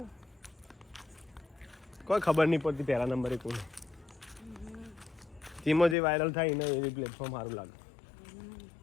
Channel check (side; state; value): right; drops out; at 6.0 s